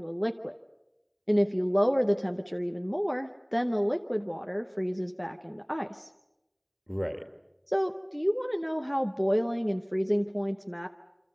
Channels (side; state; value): both; identical; correlation 1.00